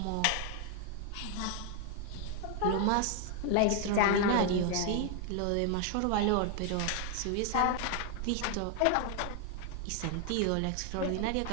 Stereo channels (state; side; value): different; both; correlation 0.00